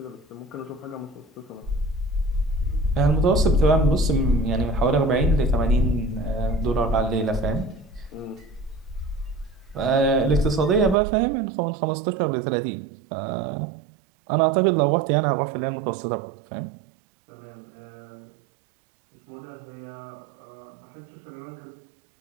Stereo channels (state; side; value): drops out; left; at 11.0 s